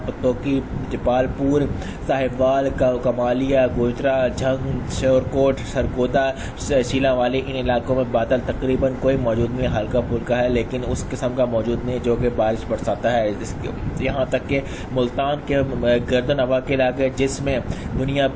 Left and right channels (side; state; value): both; identical; correlation 1.00